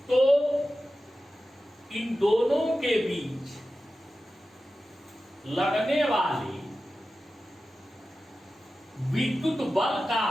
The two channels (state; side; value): normal; both; correlation 0.93